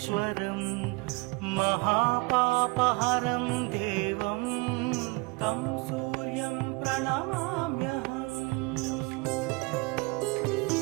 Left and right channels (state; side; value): quieter; left; 26.7 dB